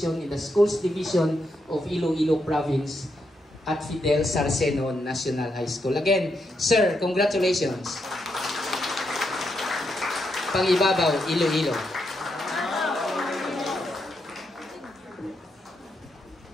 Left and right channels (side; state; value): both; normal; correlation 0.81